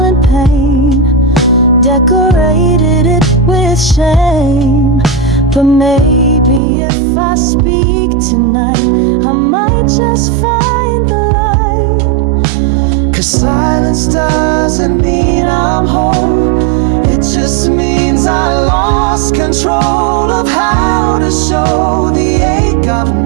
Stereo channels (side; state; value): left; drops out; at 6.6 s